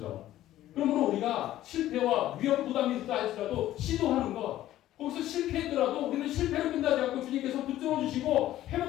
그러므로 우리가 실패와 위험 부담이 있다 할지라도 시도하는 것, 거기서 실패했더라도 우리는 실패로 끝나지 않고 주님께서 붙들어 주시고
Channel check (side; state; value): right; quieter; 13.8 dB